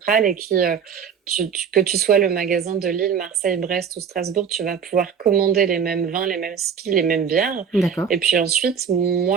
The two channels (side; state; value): left; quieter; 7.1 dB